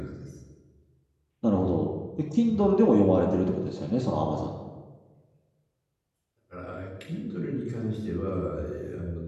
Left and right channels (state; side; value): identical; both; correlation 1.00